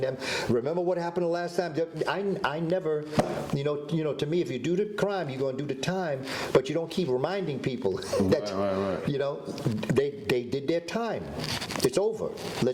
them, remember what happened the last time? I never, to me, if you do the crime, you're going to do the time, but you don't keep reminding people that, right. They did their time. It's over.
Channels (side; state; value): both; identical; correlation 1.00